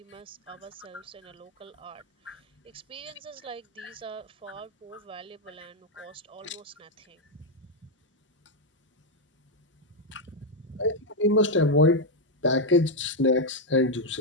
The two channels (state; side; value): normal; both; correlation 0.02